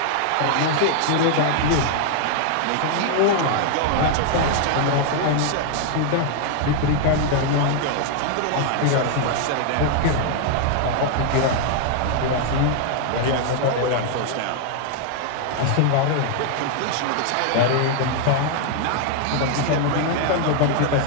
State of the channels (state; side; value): different; both; correlation 0.00